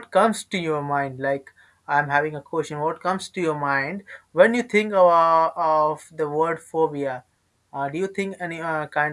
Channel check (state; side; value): identical; both; correlation 1.00